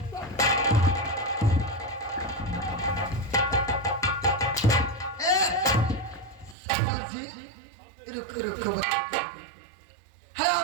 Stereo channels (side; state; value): left; drops out; at 6.6 s